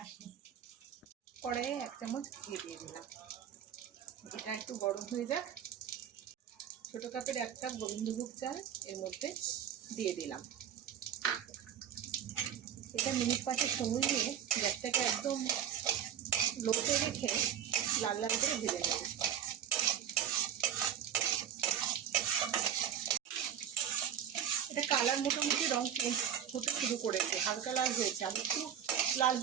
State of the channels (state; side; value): quieter; left; 9.3 dB